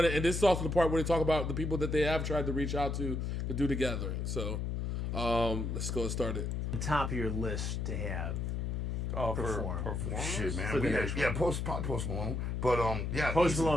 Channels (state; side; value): noise; left; hum, 1 dB below the sound